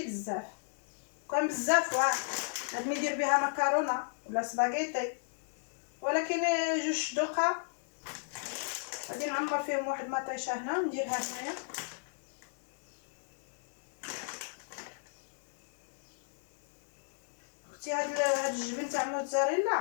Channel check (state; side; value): silent; right; digital silence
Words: بزاف. كان بزاف واه غادي ندير بها مكرونه ولا سباغيتي، ولكن جوج دوقه غادي نعمر فيهم واحد مطيشه هنا نديرها هنايا. اختي هاد الجبن تاع